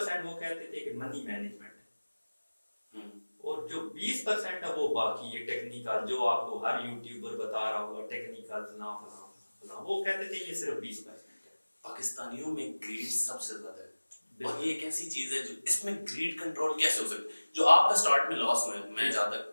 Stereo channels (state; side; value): inverted; both; correlation -1.00